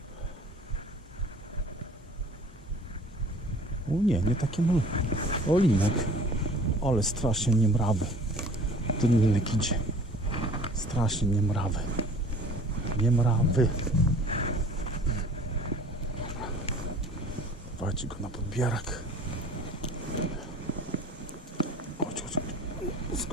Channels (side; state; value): both; normal; correlation 0.49